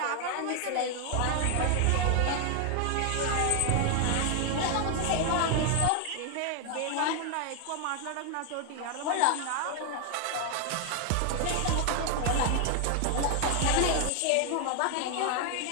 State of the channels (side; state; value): both; different; correlation 0.00